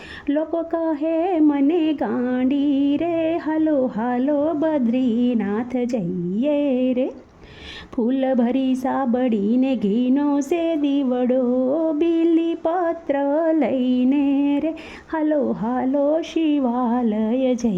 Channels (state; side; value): identical; both; correlation 1.00